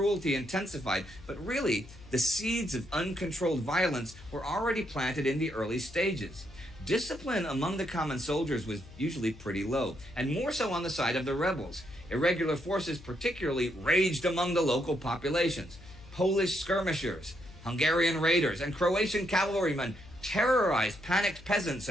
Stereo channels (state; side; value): noise; left; hum, 19 dB below the sound